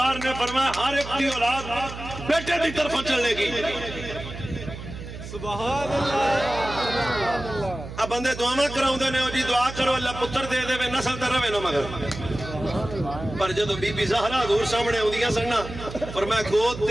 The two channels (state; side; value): noise; right; hum, 11 dB below the sound